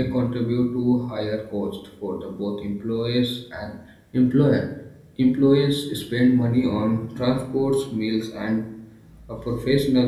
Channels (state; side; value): identical; both; correlation 1.00